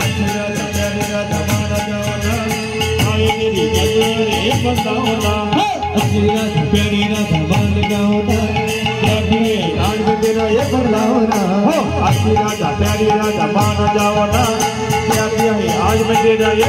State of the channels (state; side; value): identical; both; correlation 1.00